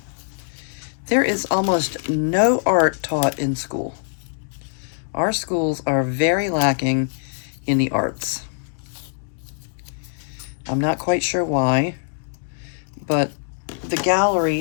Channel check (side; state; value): right; silent; digital silence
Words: there is almost no art taught in school. Our schools are very lacking in the arts. I'm not quite sure why, but the